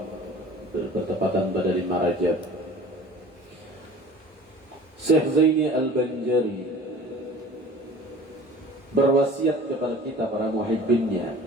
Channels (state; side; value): normal; both; correlation 0.44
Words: bertepatan pada 5 Rajab. Syekh Zaini Al-Banjari berwasiat kepada kita para